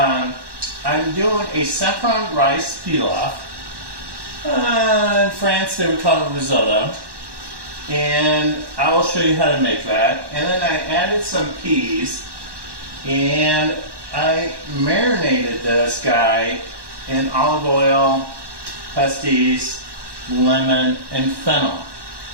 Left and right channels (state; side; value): late; left; 1.1 ms